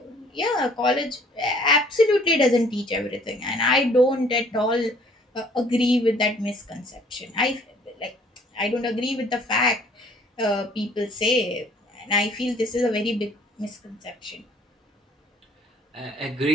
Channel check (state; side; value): normal; both; correlation 0.57